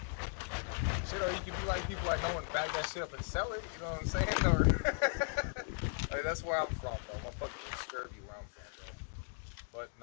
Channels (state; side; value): silent; right; 53 dB below the other